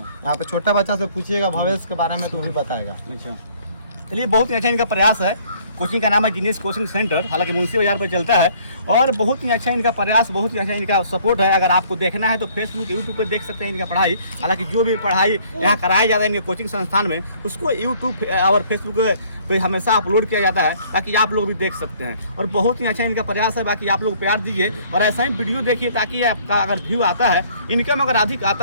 पे छोटा बच्चा से पूछिएगा भविष्य के बारे में तो भी बताएगा। चलिए बहुत ही अच्छा इनका प्रयास है कोचिंग का नाम है जीनियस कोचिंग सेंटर, हालांकि मुंशी बाजार पर चलता है। और बहुत ही अच्छा इनका प्रयास, बहुत ही अच्छा इनका सपोर्ट है। अगर आपको देखना है तो फेसबुक यूट्यूब पर देख सकते हैं इनका पढ़ाई। हालांकि जो भी पढ़ाई यहाँ कराया जाता है इनके कोचिंग संस्थान में, उसको यूट्यूब और फेसबुक पे हमेशा अपलोड किया जाता है ताकि आप लोग भी देख सकते हैं। और बहुत ही अच्छा इनका प्रयास है। बाकी आप लोग प्यार दीजिए और ऐसा ही वीडियो देखिए ताकि आपका अगर व्यू आता है, इनकम अगर अधिक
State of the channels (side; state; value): both; inverted; correlation -0.59